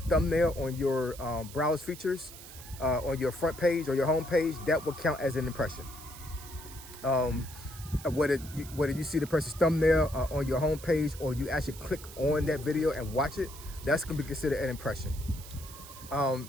thumbnail on your browse features, on your front page or your home page, that will count as an impression. Whether you see the person's thumbnail on your home page or you actually click on that video and watch it, that's gonna be considered an impression.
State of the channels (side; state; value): right; noise; hiss, 16 dB below the sound